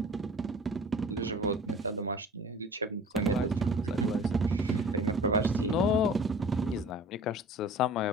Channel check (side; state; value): both; normal; correlation 0.44